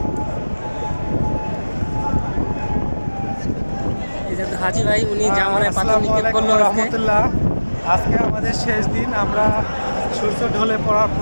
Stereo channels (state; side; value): inverted; both; correlation -1.00